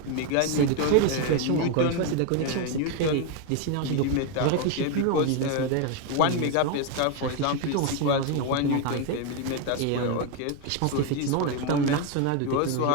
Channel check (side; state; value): both; different; correlation 0.01